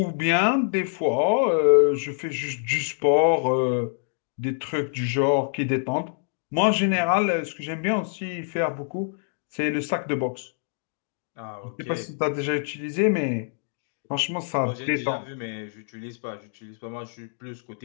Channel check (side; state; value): right; silent; digital silence